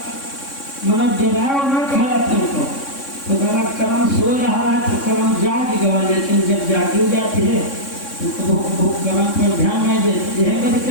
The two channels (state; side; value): late; right; 3.6 ms